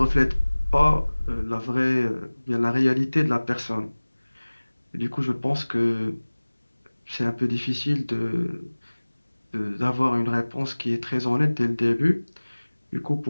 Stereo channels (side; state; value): both; inverted; correlation -1.00